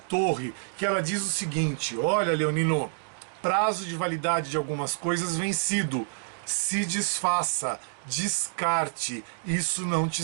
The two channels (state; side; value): silent; left; digital silence